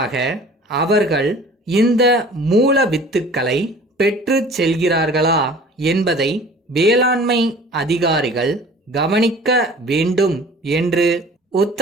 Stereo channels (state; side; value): normal; both; correlation 0.46